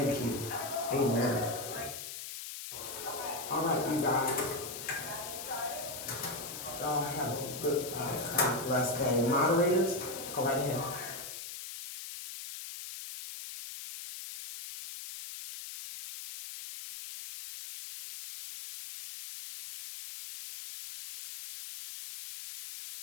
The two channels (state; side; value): noise; left; hiss, 9 dB below the sound